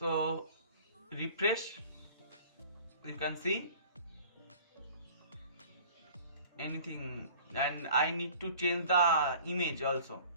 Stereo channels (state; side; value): inverted; both; correlation -0.47